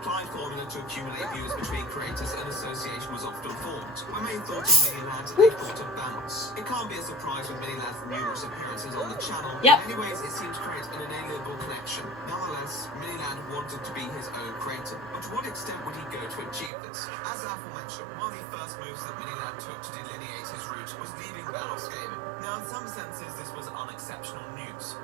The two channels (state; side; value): drops out; left; at 16.7 s